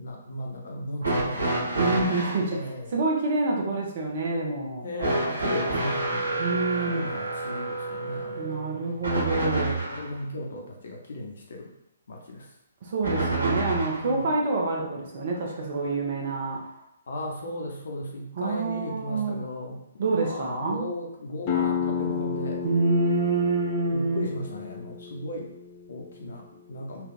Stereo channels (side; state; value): both; inverted; correlation -0.58